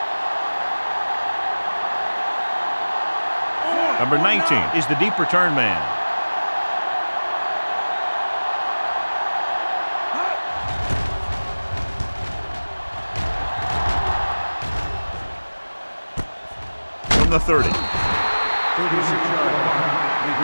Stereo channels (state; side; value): inverted; both; correlation -1.00